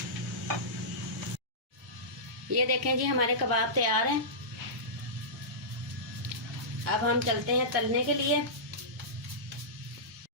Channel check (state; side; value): normal; both; correlation -0.17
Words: ये देखें जी, हमारे कबाब तैयार हैं। अब हम चलते हैं तलने के लिए।